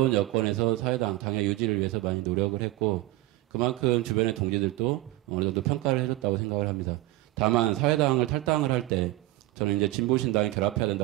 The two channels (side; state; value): left; quieter; 17.9 dB